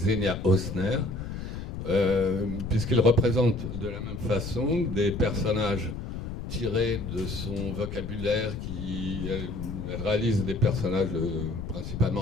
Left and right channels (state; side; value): noise; left; rumble, 7 dB below the sound